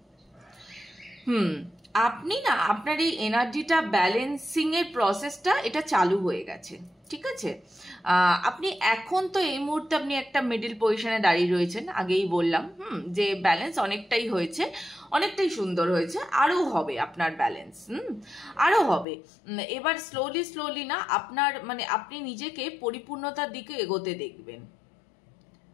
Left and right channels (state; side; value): drops out; right; at 19.1 s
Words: আপনি না আপনার এই এনার্জিটা ব্যালেন্সিং এর প্রসেসটা এটা চালু হয়ে গেছে, ঠিক আছে। আপনি এখন তো এই মুহূর্তে আপনি একটা মিডল পজিশনে দাঁড়িয়ে রয়েছেন, আগেই বললাম যে ব্যালেন্স অনেকটাই হয়েছে, অনেকটাই সুন্দর হয়েছে, আরো হবে আপনার ব্যালেন্স, আরো হবে। এবার স্লোলি স্লোলি না আপনার মানে আপনি নিজেকে পরিপূর্ণতার দিকে এগোতে দেখবেন,